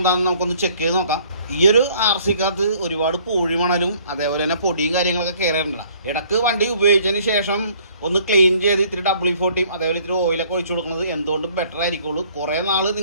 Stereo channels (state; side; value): inverted; both; correlation -0.58